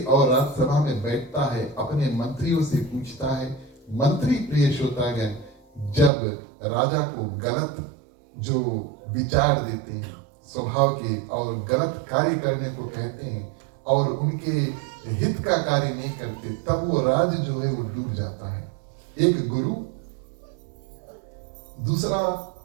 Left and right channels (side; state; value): left; drops out; at 6.1 s